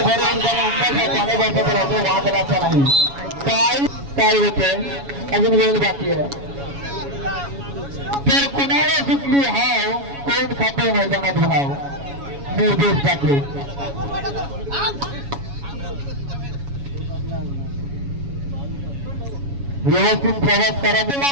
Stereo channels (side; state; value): left; late; 7.2 ms